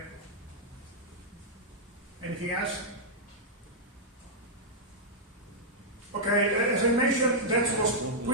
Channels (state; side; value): normal; both; correlation -0.07